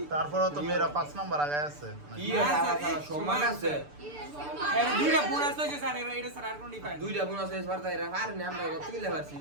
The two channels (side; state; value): left; late; 6.8 ms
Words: তারপরও তো মেয়েরা 5 নাম্বার আগে আছে। কি সমান আছে এর দুইটা বোনাস হইছে স্যার এটা স্যার আর কোন ডিফারেন্স দুইটা বোনাস এস পারতা এরা পারে না আমরা কত কিলে পারছি